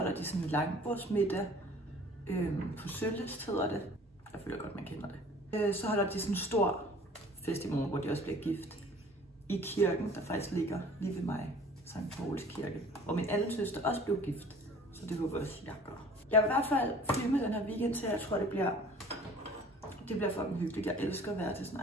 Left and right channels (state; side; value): normal; both; correlation 0.49